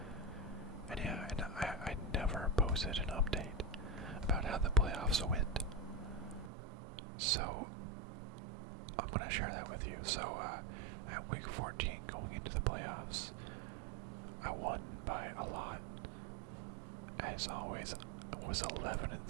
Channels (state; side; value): drops out; left; at 6.5 s